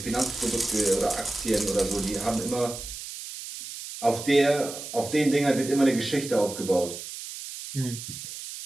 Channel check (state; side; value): noise; right; hiss, 10 dB below the sound